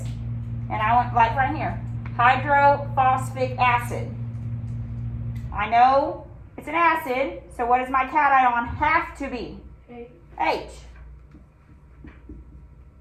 and I went like right here, hydrophosphic acid. I know it's an acid, so what does my cation have to be? H.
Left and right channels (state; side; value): identical; both; correlation 1.00